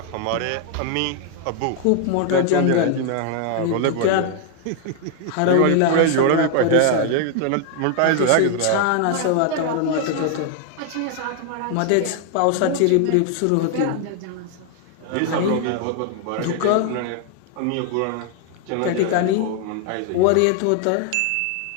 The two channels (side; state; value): both; different; correlation 0.00